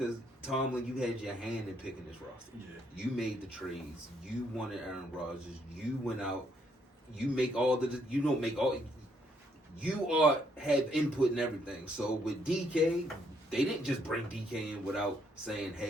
Tomlin, you had your hand in picking this roster. Yeah. You made the trades. You wanted Aaron Rodgers. You went out. You make all the. You don't make all. You have input in everything. So with DK, they didn't just bring DK in without saying,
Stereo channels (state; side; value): normal; both; correlation 0.72